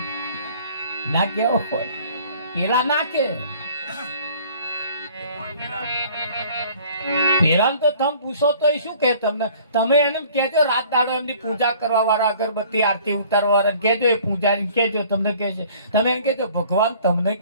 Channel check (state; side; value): inverted; both; correlation -0.53